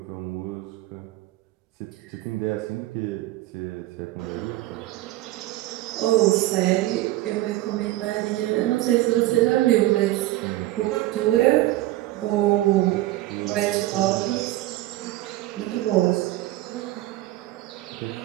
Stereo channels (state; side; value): quieter; left; 16.7 dB